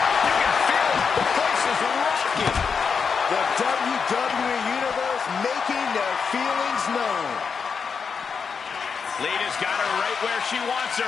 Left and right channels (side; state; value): right; quieter; 5.9 dB